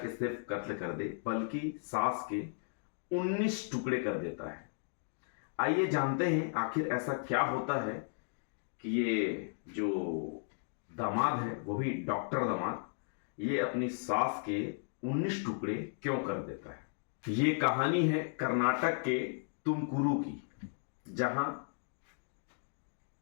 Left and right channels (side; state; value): right; silent; digital silence